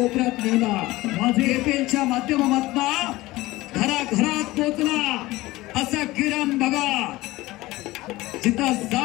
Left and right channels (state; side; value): quieter; right; 18.8 dB